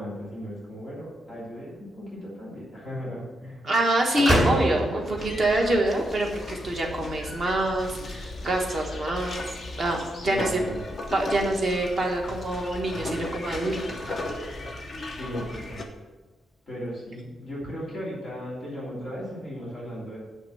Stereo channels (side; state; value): both; normal; correlation 0.82